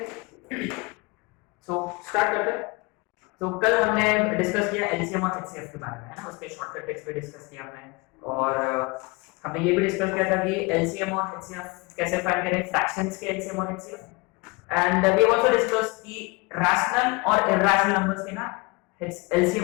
so start करते हैं। तो कल हमने डिस्कस किया एलसीएम और एचसीएफ के बारे में, है ना, उसके शॉर्टकट ट्रिक्स पे डिस्कस किया हमने। और हमने ये भी डिस्कस किया था कि एलसीएम और एचसीएफ कैसे फाइंड करें, फ्रैक्शंस के एलसीएम और HCF. And we also discuss कि रैशनल और इरैशनल नंबर्स के ना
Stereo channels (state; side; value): quieter; right; 26.4 dB